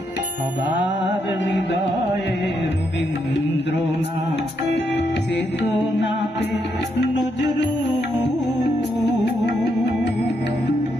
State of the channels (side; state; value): both; normal; correlation 0.78